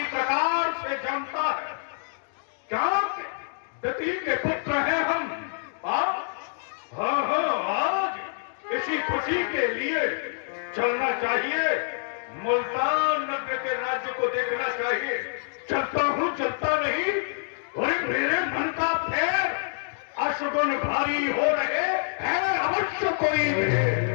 प्रकार से जानता है। क्या दती के पुत्र हैं हम? हाँ, आज इसी खुशी के लिए चलना चाहिए, मुल्तान नगर के राज्य को देखना चाहिए। चलता हूं, चलता नहीं, और मेरे मन का फेर अशुगुन भारी हो रहे हैं, अवश्य कोई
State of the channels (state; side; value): silent; right; digital silence